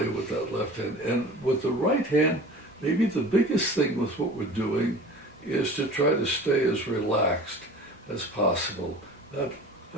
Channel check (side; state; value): both; normal; correlation 0.40